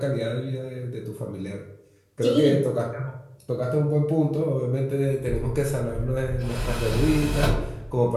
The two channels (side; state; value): both; identical; correlation 1.00